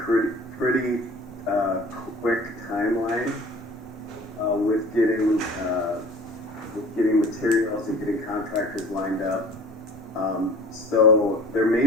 pretty quick timeline with getting materials and getting contractors lined up. So there may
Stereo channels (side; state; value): both; normal; correlation 0.45